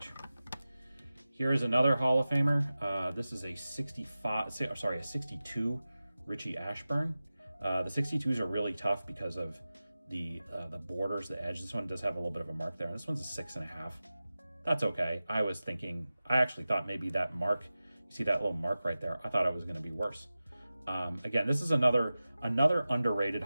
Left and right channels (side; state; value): both; inverted; correlation -0.95